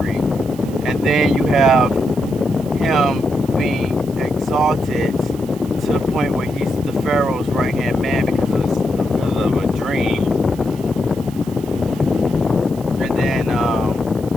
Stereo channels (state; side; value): noise; right; hiss, 21 dB below the sound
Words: And then you have him being exalted to the point where he's the Pharaoh's right-hand man because of a dream. And then